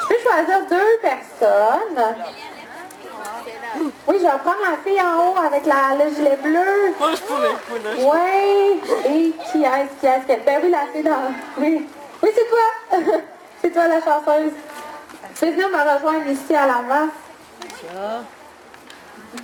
peux choisir 2 personnes. Oui, je vais prendre la fille en haut avec le gilet bleu. Moi, je pourrais. Oui. Et qui est-ce? Ben oui, la fille dans... Oui. Oui, c'est toi. C'est toi la chanteuse. Tu peux venir me rejoindre ici à l'avant.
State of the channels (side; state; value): both; identical; correlation 1.00